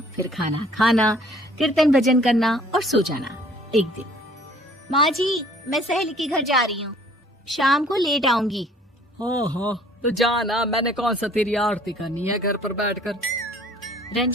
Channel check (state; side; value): normal; both; correlation 0.56